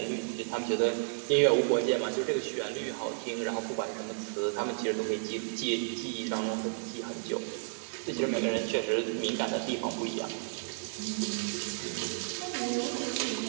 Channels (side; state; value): left; silent; 56 dB below the other